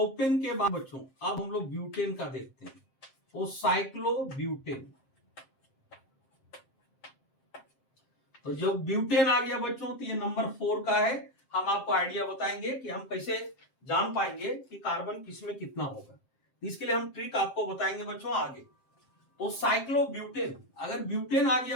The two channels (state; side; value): late; right; 7.6 ms